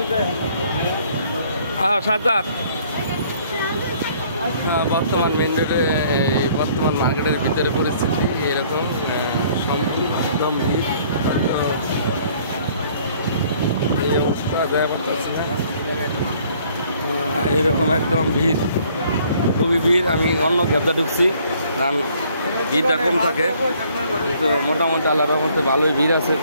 হ্যাঁ সাজার বর্তমান মেন রোডে বর্তমান মার্কেটের ভিতরে পরিস্থিতি এরকম একদম ভিড়। এই অবস্থা দেওয়া পারতেছে না, এরকম একদম ভিড়, খুবই ভিড়। আমি অন্য গ্যাবদা ঢুকছি কারণ ভিড়টা কম থাকে, কিন্তু মোটামুটি আল্লাহর মধ্যে ভালোই ভিড় আছে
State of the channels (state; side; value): inverted; both; correlation -0.60